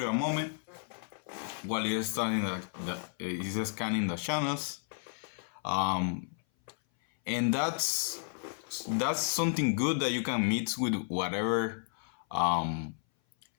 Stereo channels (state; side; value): silent; right; 56 dB below the other